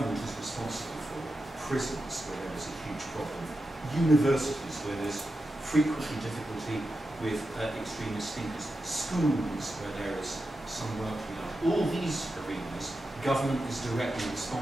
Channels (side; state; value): both; normal; correlation 0.90